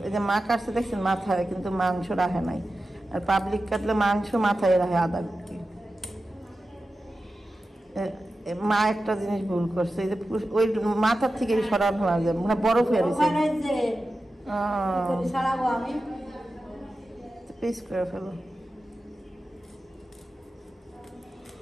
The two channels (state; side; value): normal; both; correlation 0.93